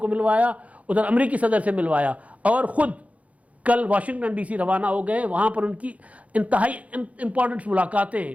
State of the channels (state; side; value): late; left; 0.067 ms